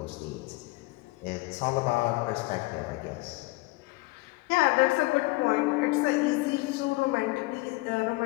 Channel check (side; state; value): right; quieter; 22.5 dB